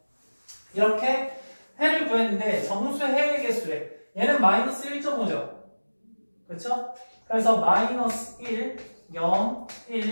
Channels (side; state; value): both; inverted; correlation -1.00